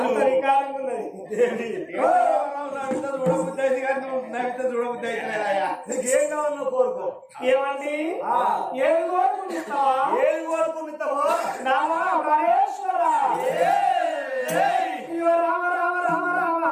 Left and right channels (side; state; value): both; identical; correlation 1.00